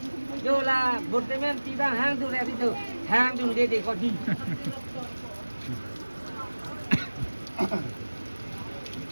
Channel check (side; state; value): both; inverted; correlation -1.00